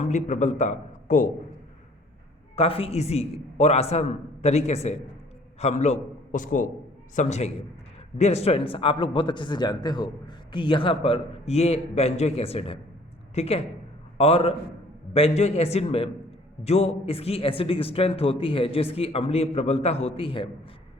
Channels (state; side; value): normal; both; correlation 0.55